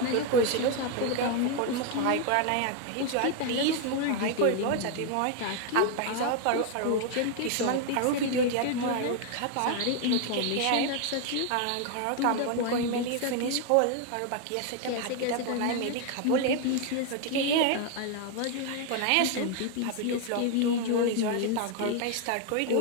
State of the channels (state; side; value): different; both; correlation 0.01